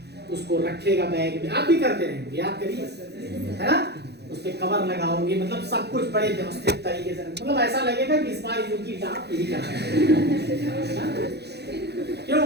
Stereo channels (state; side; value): late; left; 0.48 ms